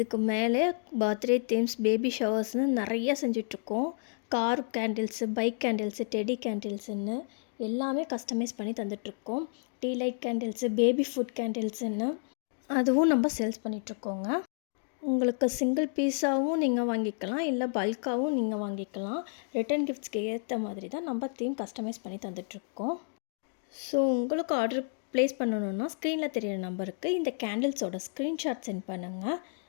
மேலே பர்த்டே தீம்ஸ், பேபி ஷவர்ஸ்னு நிறைய செஞ்சிட்ருக்கோம். Car candles, bike candles, teddy கேண்டில்ஸுன்னு எல்லாமே கஸ்டமைஸ் பண்ணி தந்துட்ருக்கோம். Tea light candles, baby food கேண்டில்ஸுன்னு அதுவும் நம்ம சேல்ஸ் பண்ணிகிட்ருக்கோங்க. உங்களுக்கு சிங்கிள் பீஸாகவும் நீங்கள் வாங்கிக்கலாம், இல்லை பல்காகவும் நீங்கள் வாங்கிக்கலாம். ரிட்டன் கிஃப்ட்ஸ்க்கு ஏற்ற மாதிரி தான் நம்ம தீம் கஸ்டமைஸ் பண்ணி தந்துட்ருக்கோம். ஸோ உங்களுக்கு ஆர்டர் ப்ளேஸ் பண்ணணுன்னா ஸ்க்ரீனில் தெரியிற நம்பருக்கு இந்த கேண்டில்ஸோட ஸ்க்ரீன்ஷாட் சென்ட் பண்ணுங்கள்.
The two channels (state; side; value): silent; right; 57 dB below the other